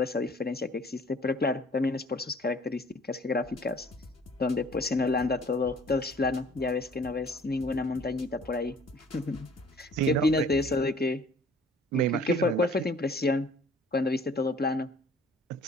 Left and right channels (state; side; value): normal; both; correlation 0.53